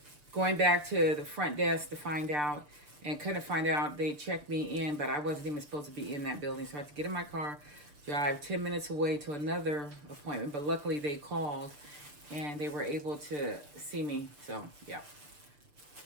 going back to the front desk to find out, and couldn't find out. They checked me in, but I wasn't even supposed to be in that building. So I had to get in my car, drive 10 minutes away to another appointment. But luckily they called, and they were able to see me. So, yeah.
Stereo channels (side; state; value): left; late; 6.8 ms